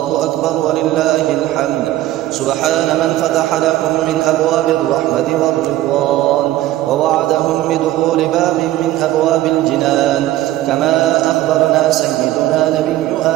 أكبر ولله الحمد. سبحان من فتح لهم من أبواب الرحمة والرضوان، ووعدهم بدخول باب من أبواب الجنان، كما أخبرنا سيدنا نبي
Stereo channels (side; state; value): left; quieter; 15.0 dB